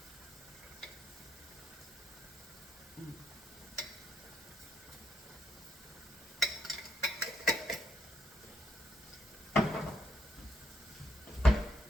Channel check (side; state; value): both; normal; correlation 0.76